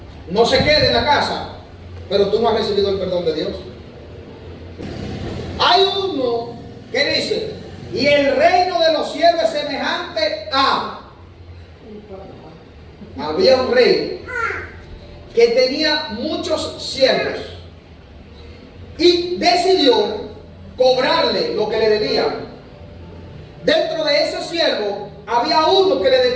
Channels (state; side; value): identical; both; correlation 1.00